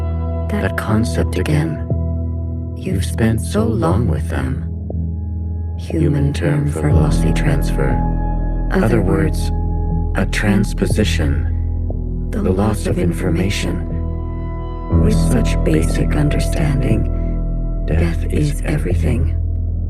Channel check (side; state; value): both; identical; correlation 1.00